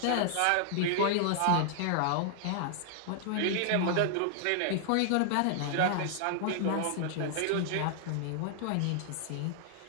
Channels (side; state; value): both; different; correlation -0.01